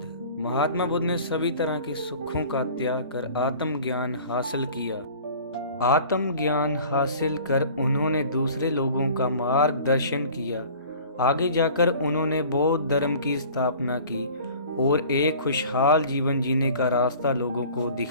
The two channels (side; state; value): both; inverted; correlation -0.46